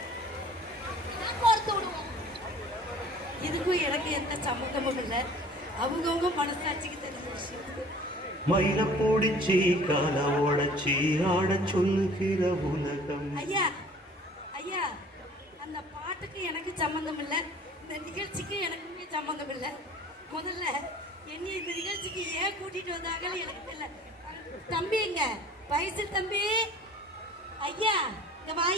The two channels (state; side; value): normal; both; correlation 0.48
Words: கோர்த்து விடுவோம். இதுக்கும் எனக்கு எந்த சம்மந்தமும் இல்லை. அவங்கவுங்க மனசாட்சிக்கு தெரிஞ்ச விஷயம். மயில போடிச்சி கால உடச்சி ஆட சொல்லுகிற உலகம். ஐயா ஐயா, அந்த பாட்டுக்கு எனக்கு சம்மந்தம் இல்லை, இந்த நிகழ்ச்சிக்கு எனக்குமே சம்மந்தம் இல்லை. முதல்ல என்னை இந்த நிகழ்ச்சிக்கு ஏன் கூட்டிட்டு வந்தாங்கன்னு எனக்கு தெரியல. தம்பி எங்க வயசு தம்பி? ஐயா இங்க வா